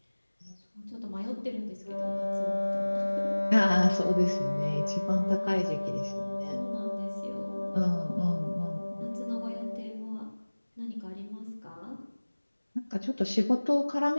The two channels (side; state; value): both; inverted; correlation -1.00